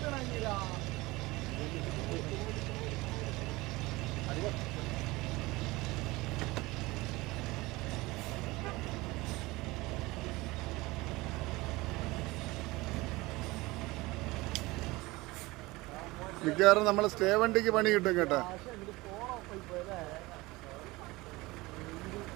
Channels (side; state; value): left; quieter; 21.4 dB